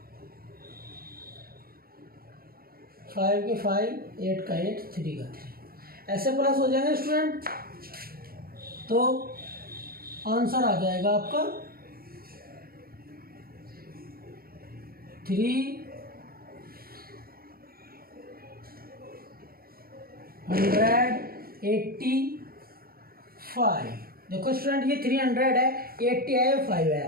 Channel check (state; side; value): late; left; 0.43 ms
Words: फाइव के 5, 8 का 8, 3 का 3, ऐसे प्लस हो जाएंगे स्टूडेंट। तो आंसर आ जाएगा आपका 385। देखो स्टूडेंट ये 300 है, 80 है, 5